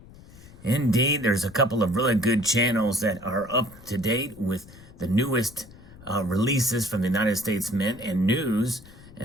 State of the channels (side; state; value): left; noise; rumble, 20 dB below the sound